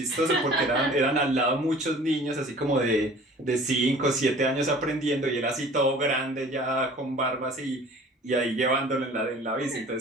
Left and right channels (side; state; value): both; normal; correlation 0.47